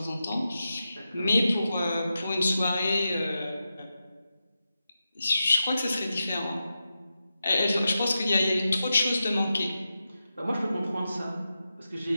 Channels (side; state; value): both; inverted; correlation -0.90